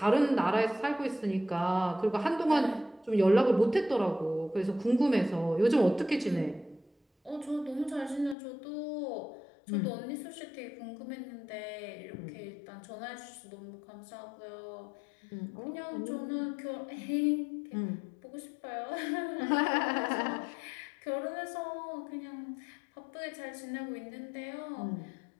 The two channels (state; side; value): drops out; right; at 8.3 s